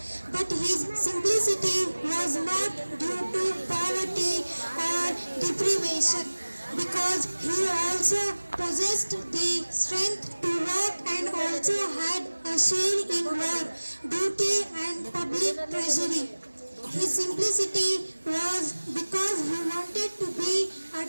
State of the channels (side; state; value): both; inverted; correlation -1.00